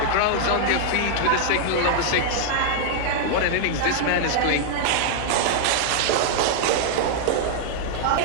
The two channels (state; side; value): different; both; correlation -0.01